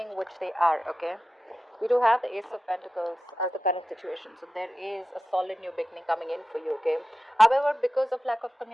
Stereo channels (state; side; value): normal; both; correlation 0.93